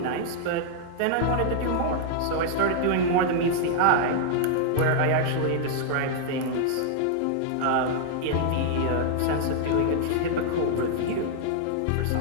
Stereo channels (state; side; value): different; both; correlation -0.01